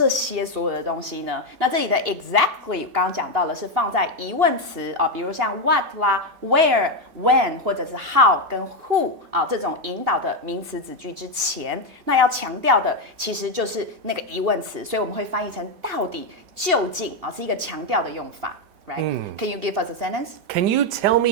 些所有的东西呢？那这里的 exactly 刚刚讲到了是放在疑问词啊，比如像 what 啦、where、when 或者是 how 跟 who 啊这种引导的名词子句之前，那要强调的其实就是那个疑问词，所以我们会翻译成到底。究竟啊，是一个强调的用法 ，right？ Can you give us a sentence? Can you tell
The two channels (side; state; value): left; late; 3.7 ms